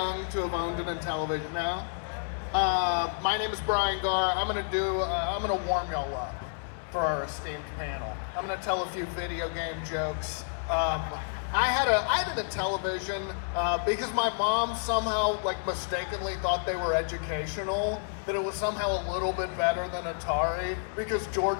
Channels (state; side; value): silent; right; digital silence